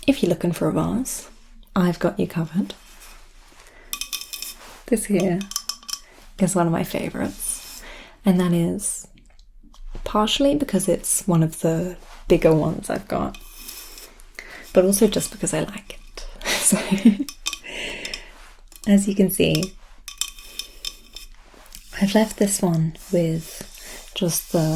if you're looking for a vase, I've got you covered. This here is one of my favourites, and that is partially because it's one of the bigger ones I've got, but also just because I like it. So, as you can see, I've left this one with just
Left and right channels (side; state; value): both; identical; correlation 1.00